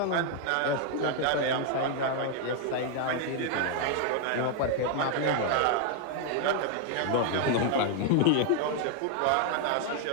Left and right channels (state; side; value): different; both; correlation 0.00